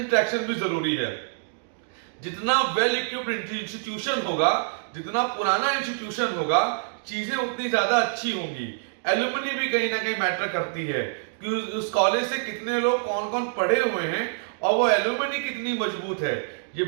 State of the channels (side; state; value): left; silent; digital silence